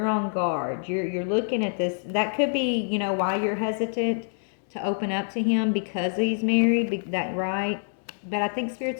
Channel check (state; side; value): silent; right; digital silence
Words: on guard. You're looking at this. That could be, why you're hesitant to open up to him, because he's married. That right? But I think